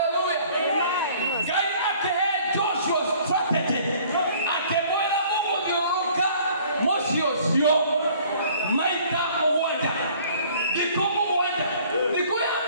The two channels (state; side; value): inverted; both; correlation -0.54